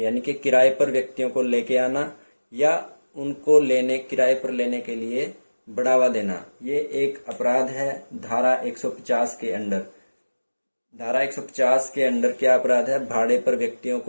कि किराए पर व्यक्तियों को लेके आना या उनको किराए पर लेने के लिए बढ़ावा देना, ये एक अपराध है धारा 150 के अंडर। धारा 150 के अंडर क्या अपराध है? भाड़े पर व्यक्तियों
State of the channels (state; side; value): inverted; both; correlation -1.00